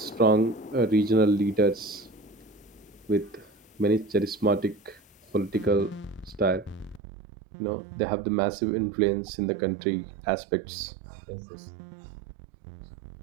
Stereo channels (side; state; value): left; drops out; at 7.0 s